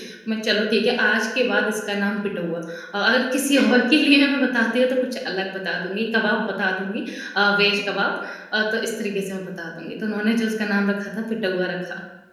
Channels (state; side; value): identical; both; correlation 1.00